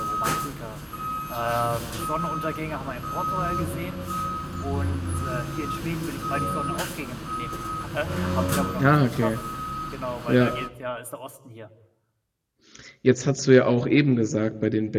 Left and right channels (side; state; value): both; identical; correlation 1.00